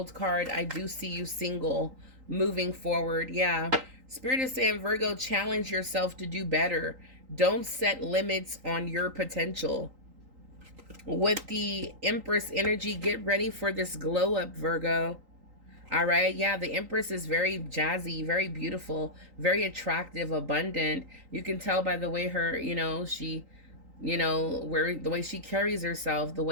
card, I do see you single, moving forward. Yeah. Spirit is saying, Virgo, challenge yourself to do better. Don't set limits on your potential. With the Empress energy, get ready for this glow up, Virgo. All right. Yeah, the Empress is very jazzy, very beautiful, very attractive, abundant. You can tell by the way her, you know, she You know, where the way she carries herself, the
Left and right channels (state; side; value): late; left; 3.8 ms